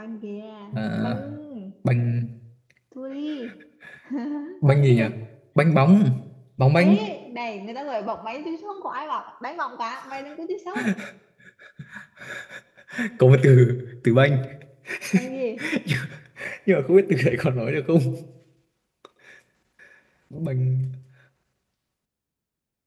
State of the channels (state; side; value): identical; both; correlation 1.00